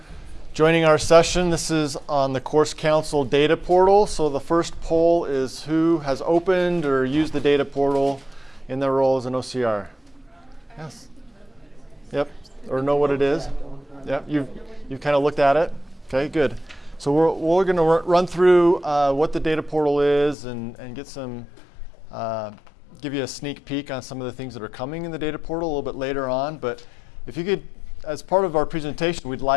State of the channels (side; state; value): right; drops out; at 20.4 s